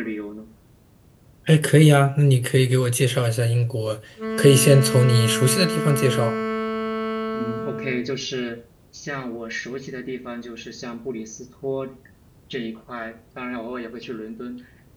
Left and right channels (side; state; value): both; identical; correlation 1.00